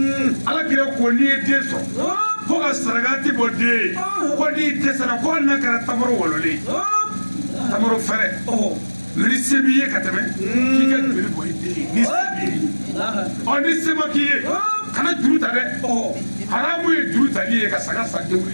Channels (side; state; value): both; inverted; correlation -1.00